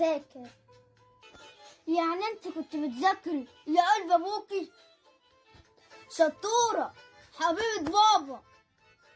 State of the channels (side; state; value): both; identical; correlation 1.00